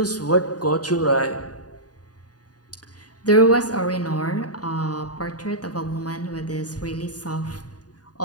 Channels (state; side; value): late; right; 0.68 ms